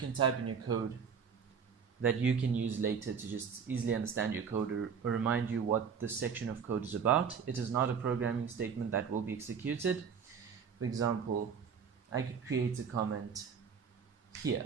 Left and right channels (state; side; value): quieter; left; 6.6 dB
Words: type in your code that you can use later to just easily understand your code or remind you what this section of code is about. It is not a programming statement that will be executed. For example, I could create a comment here.